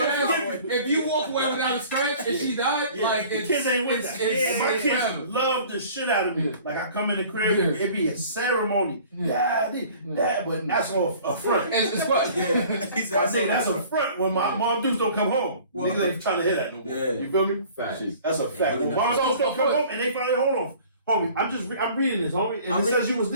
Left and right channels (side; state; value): both; inverted; correlation -0.49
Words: you walk away without a scratch and she died, Yeah, like the kids ain't with that. And my kids forever. love the shit out of me. Like I come in the crib, it be a ceremony. Daddy, but that's all a front. It's what? I think that's a front when my mom dudes don't come home. Niggas ain't trying to hear that no more. Yeah. You feel me? That's a fact. When mom dudes don't come home and they finally hold on. Homie, I'm reading this, homie, and it says you was